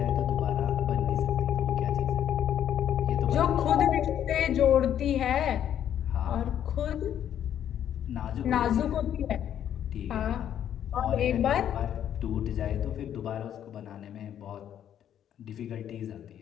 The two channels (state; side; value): quieter; right; 10.1 dB